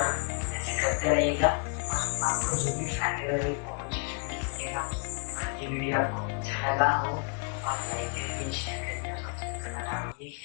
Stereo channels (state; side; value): quieter; right; 37.6 dB